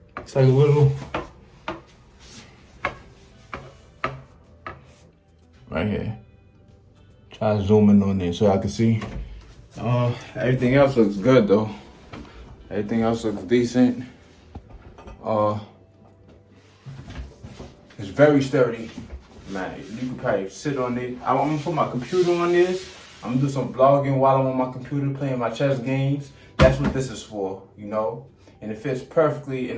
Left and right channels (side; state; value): both; identical; correlation 1.00